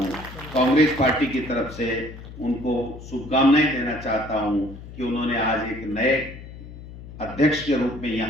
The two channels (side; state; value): left; noise; hum, 14 dB below the sound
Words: कांग्रेस पार्टी की तरफ से उनको शुभकामनाएं देना चाहता हूं कि उन्होंने आज एक नए अध्यक्ष के रूप में